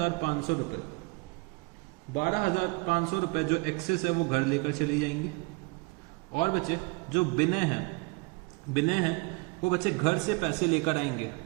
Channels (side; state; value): left; quieter; 29.3 dB